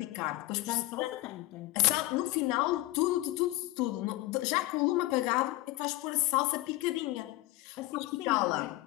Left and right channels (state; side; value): quieter; right; 18.3 dB